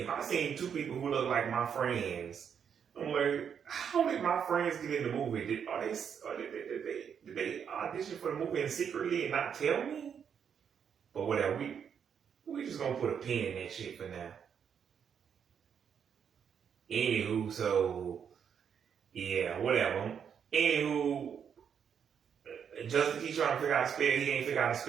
I seen two people who look like my friends, I'm like, how did my friends get in the movie? Did they audition for the movie and secretly and not tell me? But whatever, we just gonna put a pin in that shit for now. Anywho, so yeah, whatever. Anywho, Justin keeps trying to figure out a spell. He ain't figure out a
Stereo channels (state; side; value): quieter; left; 7.6 dB